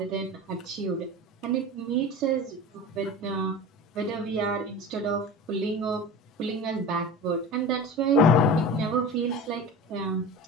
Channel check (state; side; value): normal; both; correlation 0.33